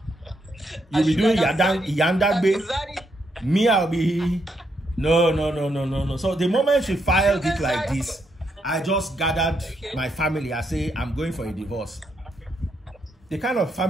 You'll be doing yandagbe. Me, I'll be... No. So the moment she filed it like this, I just gathered my family. I say, I'm going for a divorce. The kind of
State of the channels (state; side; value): normal; both; correlation 0.78